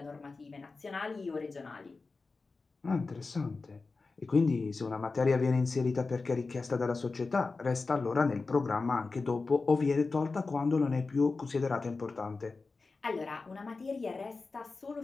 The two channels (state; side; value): quieter; right; 4.0 dB